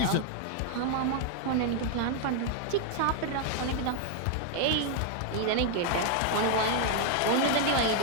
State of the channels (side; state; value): both; different; correlation 0.00